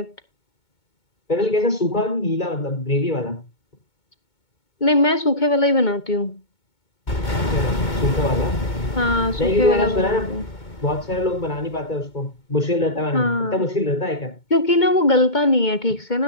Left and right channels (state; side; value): late; right; 2.2 ms